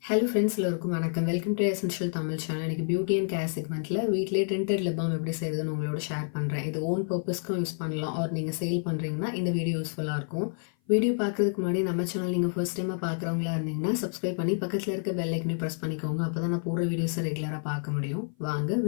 ஹலோ ஃப்ரெண்ட்ஸ், எல்லோருக்கும் வணக்கம். Welcome to essential Tamil channel. எனக்கு பியூட்டி அண்ட் கேர் செக்மெண்ட்டில் வீட்டிலே டென்டட் லிப் பாம் எப்படி செய்கிறதுன்னு உங்களோட ஷேர் பண்ணுறேன். இது ஓன் பர்பஸ்க்கும் யூஸ் பண்ணலாம், ஆர் நீங்கள் சேல் பண்ணுறீங்கன்னா இந்த வீடியோ யூஸ்ஃபுல்லாக இருக்கும். வீடியோ பார்க்குறதுக்கு முன்னாடி நம்ம சேனல் நீங்கள் ஃபர்ஸ்ட் டைமாக பார்க்குறவங்களா இருந்தீங்கன்னா சப்ஸ்கிரைப் பண்ணி பக்கத்தில் இருக்க பெல் ஐக்கனையும் ப்ரெஸ் பண்ணிக்கோங்க. அப்போ தான் நான் போகிற வீடியோஸை ரெகுலராக பார்க்க முடியும். வாங்க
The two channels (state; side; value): silent; right; 55 dB below the other